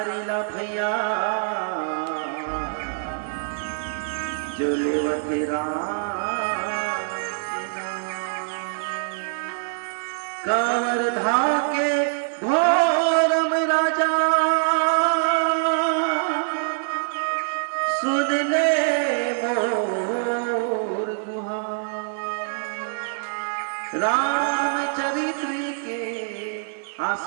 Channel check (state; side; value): silent; left; digital silence